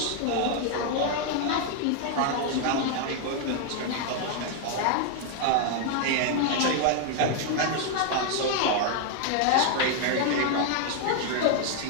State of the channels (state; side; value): different; both; correlation 0.00